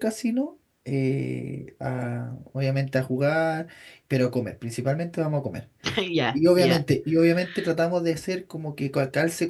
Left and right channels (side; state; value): both; identical; correlation 1.00